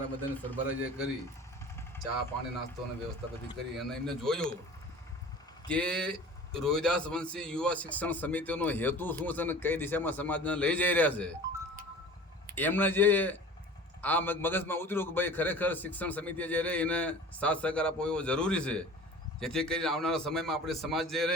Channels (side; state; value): both; normal; correlation 0.41